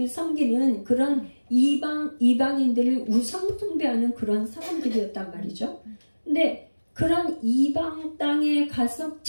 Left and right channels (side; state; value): both; inverted; correlation -1.00